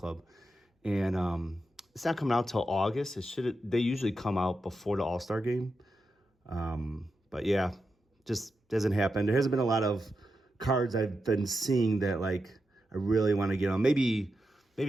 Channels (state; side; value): normal; both; correlation 0.88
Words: And it's not coming out till August. They usually come out before the All-Star game. But yeah, just doesn't happen. There hasn't been a lot of cards I've been seeing that I really want to get on. Maybe